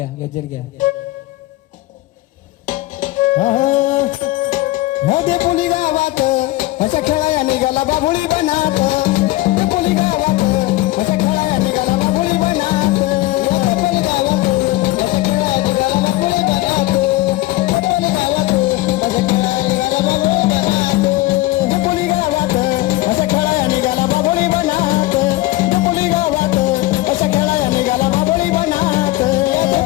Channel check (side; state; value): right; quieter; 18.2 dB